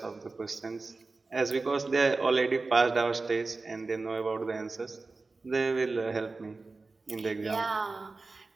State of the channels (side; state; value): left; quieter; 3.7 dB